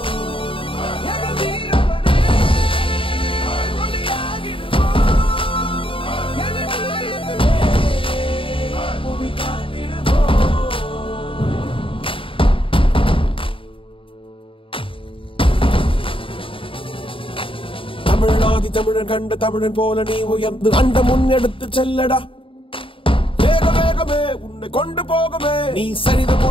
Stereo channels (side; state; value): right; late; 0.26 ms